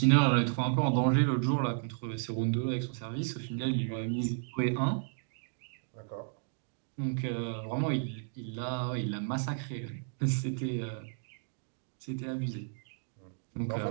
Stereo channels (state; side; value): silent; left; digital silence